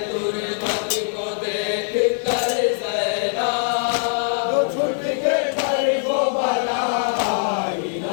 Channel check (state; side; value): silent; right; 64 dB below the other